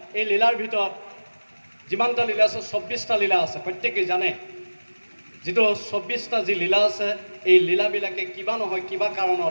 এই লীলাৰ ভিতৰত যিমানটা লীলা আছে, 24টা লীলা আছে। প্ৰত্যেকেই জানে যিটো 24টা যি লীলা আছে, এই লীলাবিলাকে কিবা নহয় কিবা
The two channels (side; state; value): both; inverted; correlation -1.00